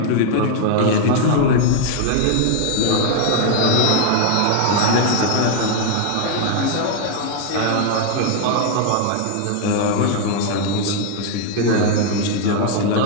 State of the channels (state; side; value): different; both; correlation 0.00